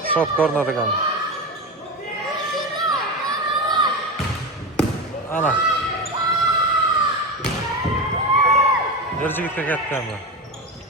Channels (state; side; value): normal; both; correlation 0.20